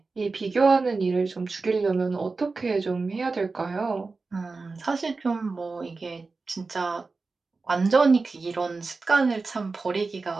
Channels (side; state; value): left; quieter; 4.0 dB